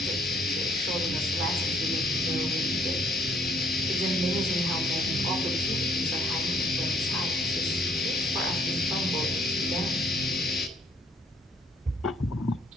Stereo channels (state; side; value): normal; both; correlation 0.63